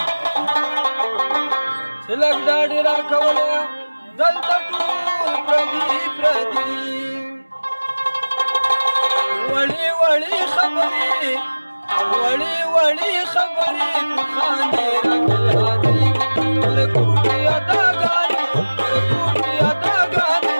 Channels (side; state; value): both; inverted; correlation -1.00